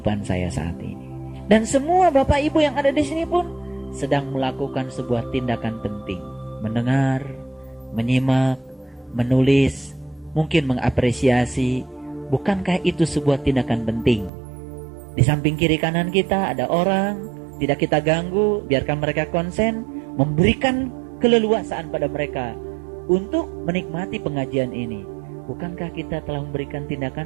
saya saat ini. Dan semua Bapak Ibu yang ada di sini pun sedang melakukan sebuah tindakan penting. Mendengar, menyimak, menulis, mungkin mengapresiasi. Bukankah itu sebuah tindakan penting? Di samping kiri kanan kita ada orang, tidak kita ganggu, biarkan mereka konsen, memberikan keleluasaan pada mereka untuk menikmati pengajian ini. Bukankah kita telah memberikan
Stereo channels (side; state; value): left; drops out; at 14.3 s